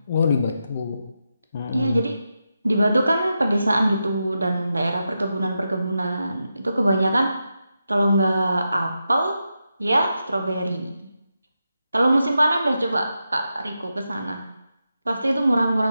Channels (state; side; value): inverted; both; correlation -0.87